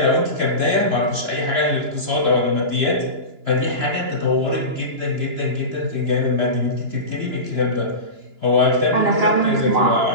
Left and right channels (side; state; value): left; late; 2.9 ms